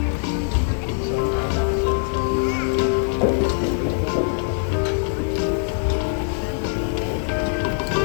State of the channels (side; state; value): right; silent; 64 dB below the other